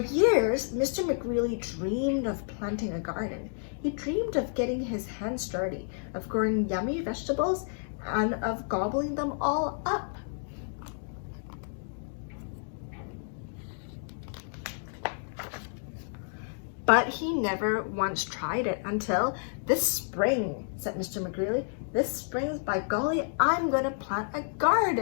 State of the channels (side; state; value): right; silent; digital silence